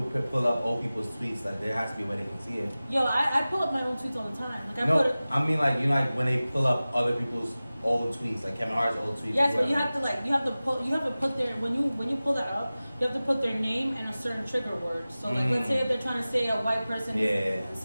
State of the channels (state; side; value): inverted; both; correlation -0.97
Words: pull up old people's tweets, like there has to be a way they can see it. yo, I pull up my own tweets all the time. Like I put No, it. I mean like you know, like when they pull up other people's old tweets, like Kevin Hart's old tweets. Yes, or but you whatever. have to you have to put their when you pull that up, you have to put their name and a certain trigger word. So like let's say if they're trying to say a white person